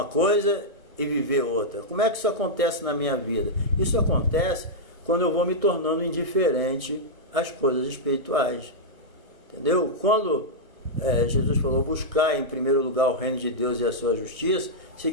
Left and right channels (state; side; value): late; left; 1.2 ms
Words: coisa e viver outra. Como é que isso acontece na minha vida? Isso acontece quando eu vou me tornando indiferente às coisas espirituais. Entendeu? Quando Jesus falou buscar em primeiro lugar o reino de Deus e a sua justiça,